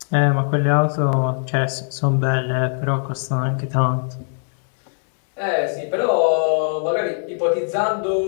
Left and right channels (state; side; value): silent; right; digital silence